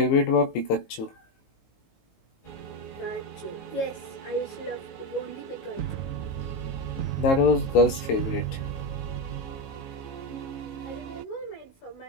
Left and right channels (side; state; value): right; late; 18 ms